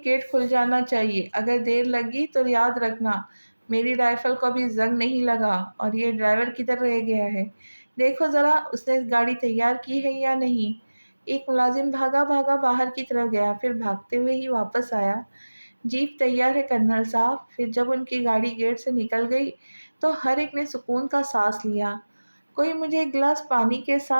گیٹ کھل جانا چاہیے، اگر دیر لگی تو یاد رکھنا میری رائفل کو ابھی زنگ نہیں لگا اور یہ ڈرائیور کدھر رہ گیا ہے، دیکھو ذرا اس نے گاڑی تیار کی ہے یا نہیں۔ ایک ملازم بھاگا بھاگا باہر کی طرف گیا، پھر بھاگتے ہوئے ہی واپس آیا، جیپ تیار ہے کرنل صاحب۔ پھر جب ان کی گاڑی گیٹ سے نکل گئی تو ہر ایک نے سکون کا سانس لیا۔ کوئی مجھے ایک گلاس پانی کے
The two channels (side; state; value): both; inverted; correlation -1.00